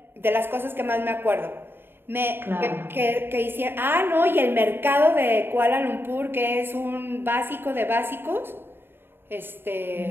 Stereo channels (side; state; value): left; late; 0.10 ms